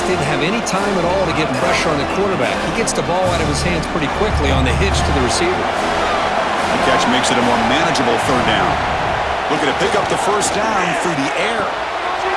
didn't have any time at all to get pressure on the quarterback. He gets the ball out of his hands pretty quickly on the hitch to the receiver. The catch makes it a more manageable third down. Looking to pick up the first down through the air.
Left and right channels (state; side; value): identical; both; correlation 1.00